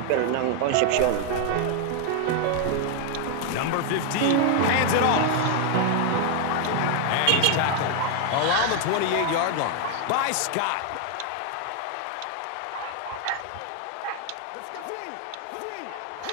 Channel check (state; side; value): different; both; correlation 0.00